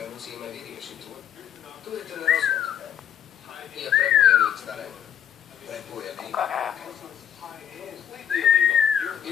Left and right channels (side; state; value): right; quieter; 9.4 dB